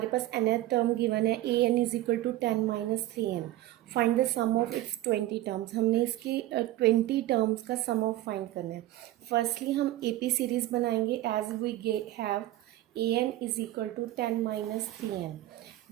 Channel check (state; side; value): quieter; left; 15.4 dB